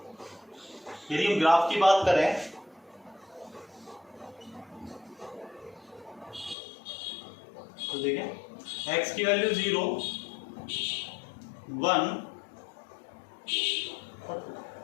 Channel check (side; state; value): right; drops out; at 6.6 s